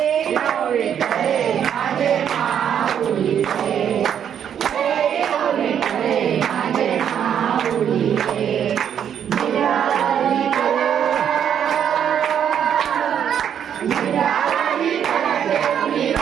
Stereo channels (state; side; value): quieter; left; 8.8 dB